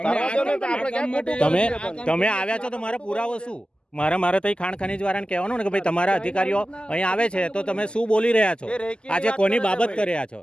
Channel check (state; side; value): late; right; 0.049 ms